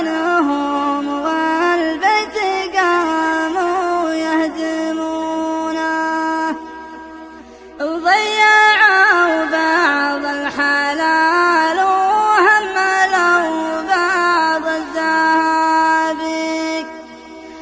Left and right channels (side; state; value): both; identical; correlation 1.00